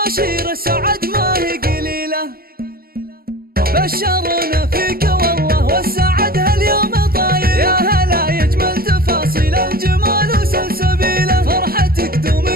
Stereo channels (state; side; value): late; left; 0.44 ms